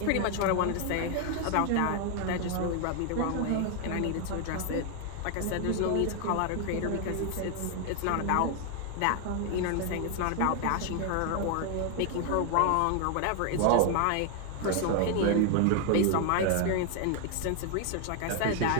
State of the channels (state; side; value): different; both; correlation 0.00